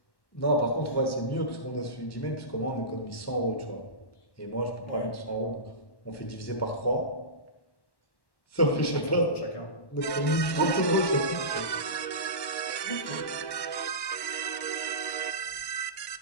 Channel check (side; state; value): right; late; 1.1 ms